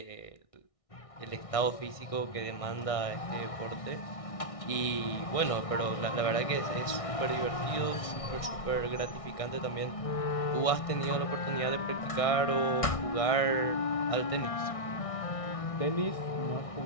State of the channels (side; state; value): right; late; 1.6 ms